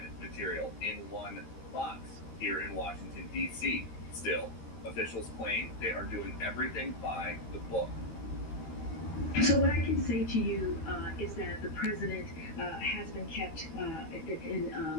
material in one box here in Washington, D.C. Still, officials claim they are doing everything by the book. So what I can say to you is that the president has been kept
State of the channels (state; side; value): late; right; 13 ms